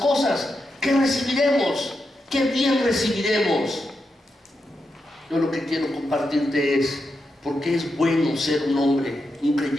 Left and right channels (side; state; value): both; normal; correlation 0.86